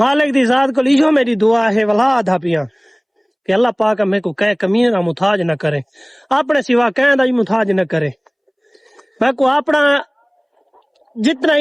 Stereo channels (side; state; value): both; identical; correlation 1.00